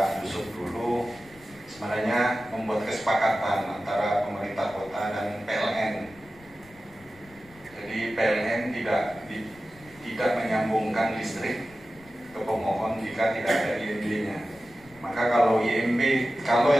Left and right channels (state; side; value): noise; left; rumble, 25 dB below the sound